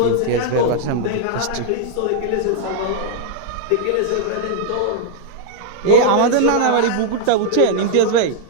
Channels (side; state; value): both; different; correlation -0.01